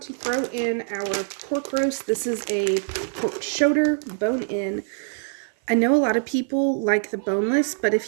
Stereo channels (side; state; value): left; silent; 57 dB below the other